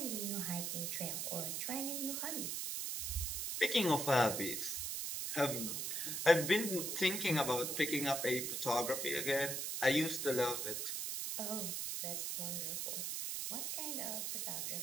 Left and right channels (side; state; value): right; noise; hiss, 2 dB below the sound